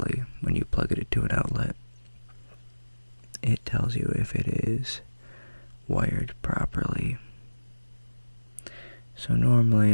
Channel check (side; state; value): both; inverted; correlation -1.00